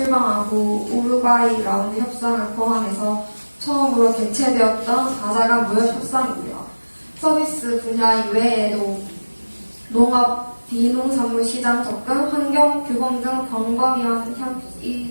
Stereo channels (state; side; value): inverted; both; correlation -1.00